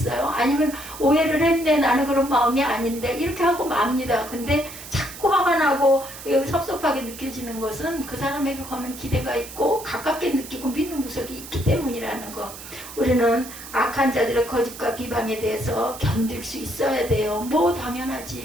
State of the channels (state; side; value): noise; right; hiss, 13 dB below the sound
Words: 아니면 오해를 했네, 나는 그런 마음이 아닌데 이렇게 하고 맙니다. 근데 자꾸 화가 나고 섭섭하게 느껴지는 것은 그 사람에게 거는 기대가 있고 가깝게 느끼고 믿는 구석이 있기 때문이라는 거. 우리는 악한 자들의 거짓과 비방에 대해서 견딜 수 있어야 돼요. 뭐